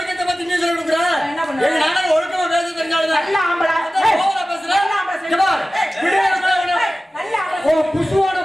பத்தி நீ சொல்லி கொடுக்குற. என்ன பண்ண? நானும் ஒழுக்கமா பேச தெரிஞ்சாலும் நல்ல ஆம்பளை. ஓவரா பேசுற. நல்ல ஆம்பளை. ஓ புசுவோட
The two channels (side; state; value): both; normal; correlation 0.96